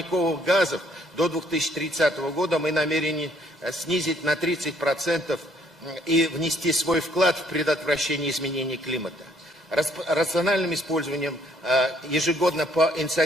газов до 2030 года мы намерены снизить на 30% и внести свой вклад в предотвращение изменений климата. Рациональным использованием ежегодно по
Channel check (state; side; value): normal; both; correlation 0.65